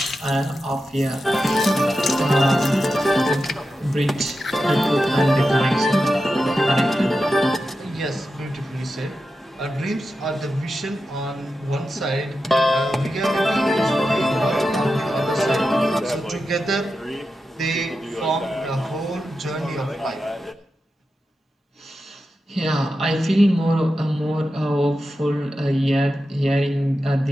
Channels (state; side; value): normal; both; correlation 0.91